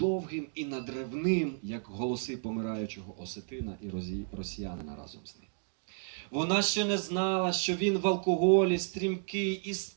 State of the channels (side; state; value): left; silent; 56 dB below the other